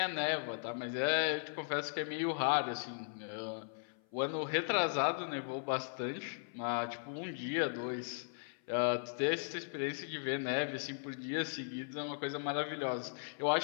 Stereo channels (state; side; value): silent; right; 53 dB below the other